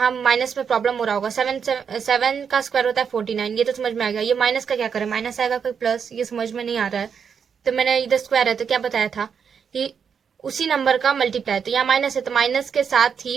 माइनस में प्रॉब्लम हो रहा होगा। 7 का स्क्वायर होता है 49, ये तो समझ में आ गया। ये माइनस का क्या करें, माइनस आएगा कोई प्लस, ये समझ में नहीं आ रहा है। तो मैंने इधर स्क्वायर है तो क्या बताया था कि उसी नंबर का मल्टीप्लाई, तो यहाँ माइनस है तो माइनस के साथ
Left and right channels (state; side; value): quieter; left; 6.8 dB